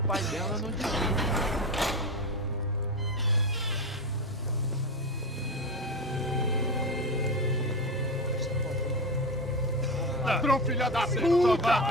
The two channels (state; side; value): normal; both; correlation 0.20